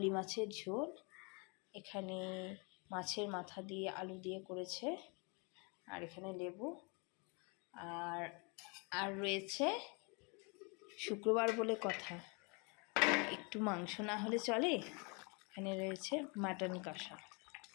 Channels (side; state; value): right; quieter; 32.4 dB